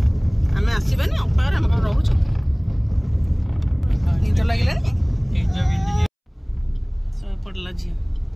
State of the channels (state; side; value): identical; both; correlation 1.00